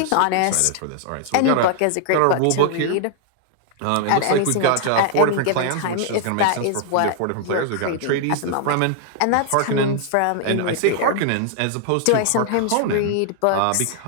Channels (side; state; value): both; different; correlation 0.00